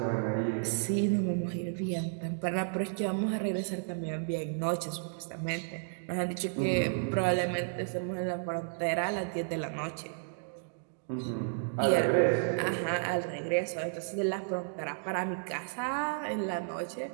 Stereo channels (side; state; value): left; silent; digital silence